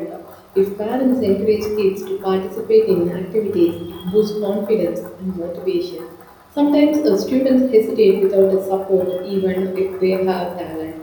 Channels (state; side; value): identical; both; correlation 1.00